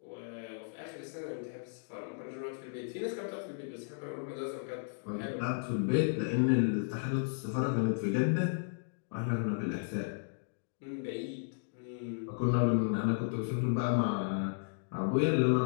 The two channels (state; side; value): silent; right; digital silence